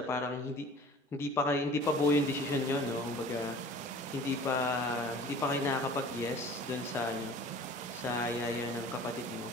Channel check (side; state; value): both; normal; correlation 0.45